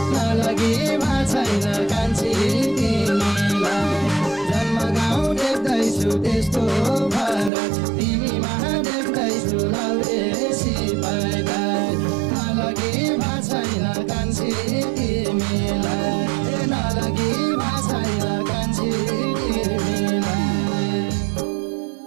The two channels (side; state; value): left; drops out; at 7.5 s